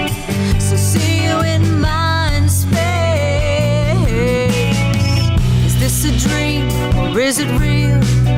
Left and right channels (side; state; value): both; identical; correlation 1.00